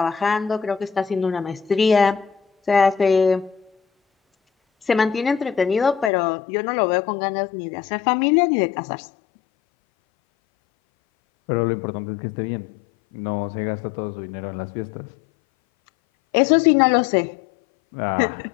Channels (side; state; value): right; drops out; at 6.1 s